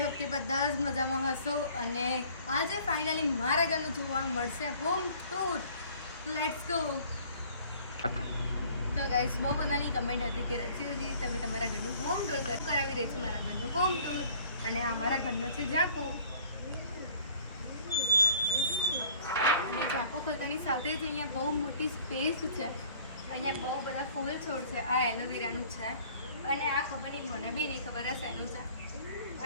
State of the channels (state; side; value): inverted; both; correlation -0.54